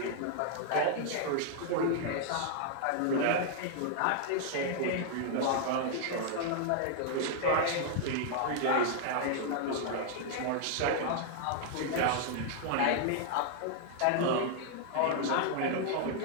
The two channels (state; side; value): different; both; correlation -0.01